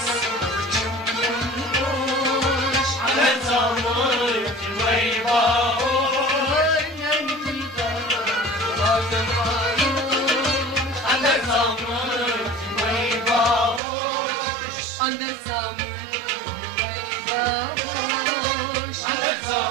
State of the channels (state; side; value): drops out; left; at 13.8 s